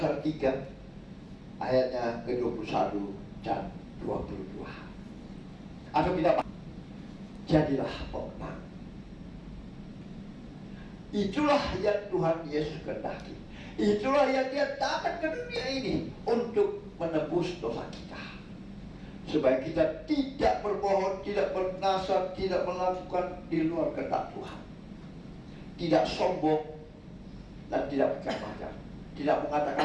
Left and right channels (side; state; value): both; identical; correlation 1.00